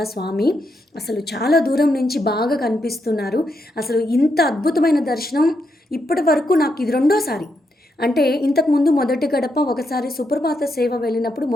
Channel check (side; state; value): both; normal; correlation 0.81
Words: స్వామి. అసలు చాలా దూరం నుంచి బాగా కనిపిస్తున్నారు. అసలు ఇంత అద్భుతమైన దర్శనం ఇప్పటి వరకు నాకు ఇది రెండోసారి. అంటే ఇంతకుముందు మొదటి గడప ఒకసారి సుప్రభాత సేవ వెళ్ళినప్పుడు